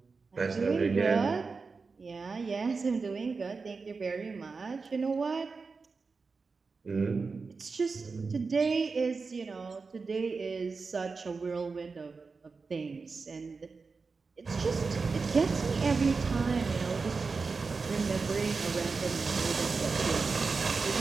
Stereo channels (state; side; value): quieter; left; 4.5 dB